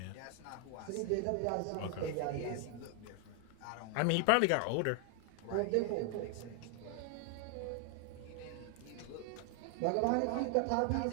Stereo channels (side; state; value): both; different; correlation 0.00